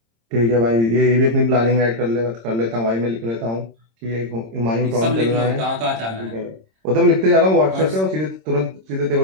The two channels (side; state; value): left; late; 26 ms